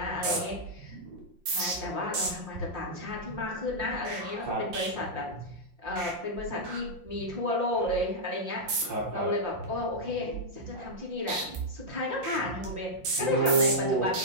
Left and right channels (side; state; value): left; late; 5.7 ms